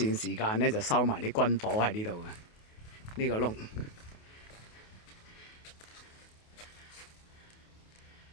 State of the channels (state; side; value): late; right; 28 ms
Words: 時間呢，就收埋啲軍火喺呢度嘅，呢個窿